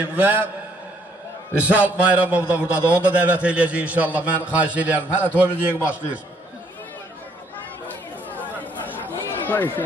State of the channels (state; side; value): normal; both; correlation 0.67